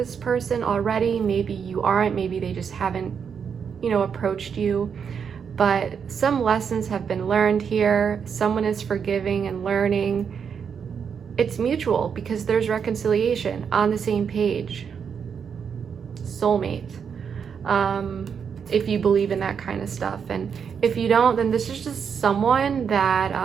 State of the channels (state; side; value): quieter; left; 6.9 dB